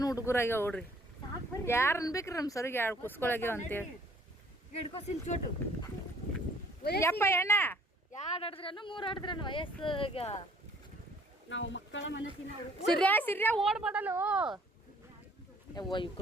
ಹುಡುಗರಾಗ್ಯಾವ ನೋಡ್ರಿ. ಯಾರು ಅನ್ಬೇಕ್ರಿ ನಮ್ಮ ಸರಿಗೆ 2 ಕುಸ್ಕೊಳಗ್ಯಾವ ಅಂತೇಳಿ. ಯಪ್ಪ ಎಣ್ಣ 2 ಆಡಿದ್ರೇನು 3 ಆಡಿದ್ರೇನು ವಯಸ್ಸಾಗ ನಾವು ಮಕ್ಕಳ ಮನಸ್ಸಿನ ಸಿರ್ಯಾ ಓಡ್ಬಾಡಲು. ಯವ್ವ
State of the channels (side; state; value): both; normal; correlation 0.59